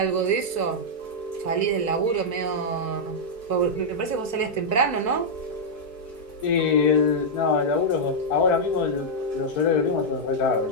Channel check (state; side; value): late; right; 4.6 ms